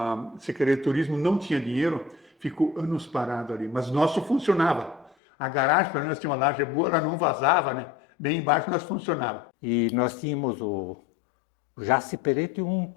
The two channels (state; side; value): drops out; right; at 5.2 s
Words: Secretaria de Turismo, não tinha dinheiro, ficou anos parado ali. Mas nosso funcionava. A garagem, para nós, tinha uma laje boa, ela não vazava, né? Bem embaixo nós funcionava. E nós tínhamos o Jaci Peretti, um